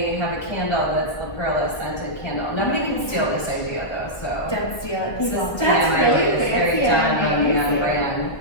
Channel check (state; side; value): late; right; 1.5 ms